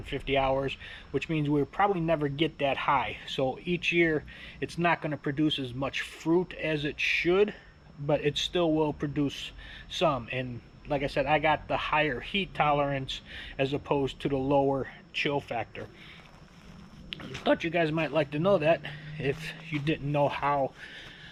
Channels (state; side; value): identical; both; correlation 1.00